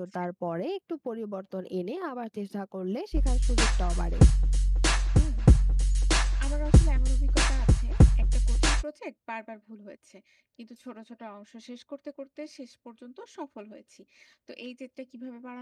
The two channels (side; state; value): both; identical; correlation 1.00